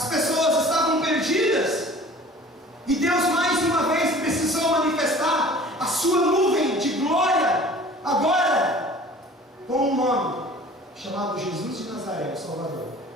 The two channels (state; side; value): normal; both; correlation 0.46